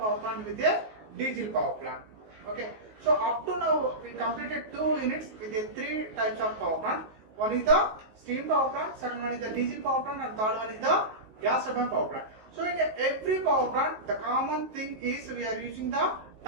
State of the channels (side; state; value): left; late; 19 ms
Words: plant with a diesel power plant. Okay, so up to now we completed 2 units with the 3 types of power plant. One is the steam power plant, second one is the diesel power plant, and third one is the gas turbine power plant. So in every power plant, the common thing is we are using the